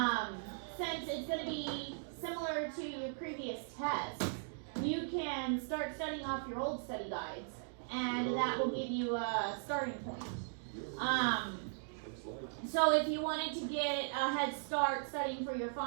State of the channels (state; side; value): silent; left; digital silence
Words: Since it's going to be similar to your previous tests, you can start studying off your old study guides, and that will give you a starting point. So if you wanted to get a head start studying for your